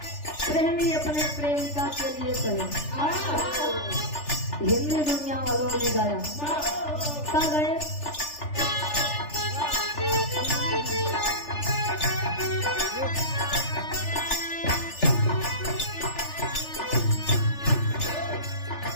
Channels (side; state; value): right; late; 3.4 ms